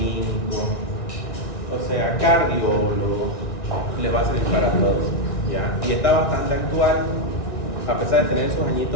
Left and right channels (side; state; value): right; late; 1.9 ms